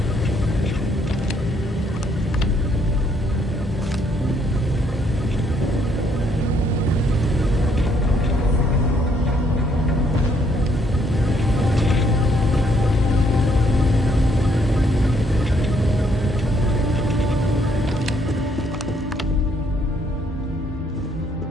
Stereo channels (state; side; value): normal; both; correlation 0.69